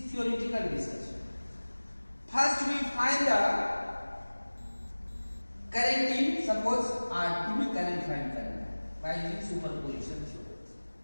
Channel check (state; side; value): inverted; both; correlation -1.00